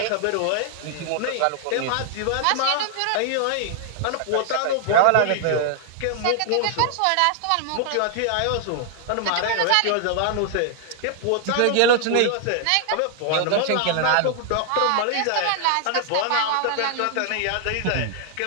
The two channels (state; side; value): different; both; correlation 0.00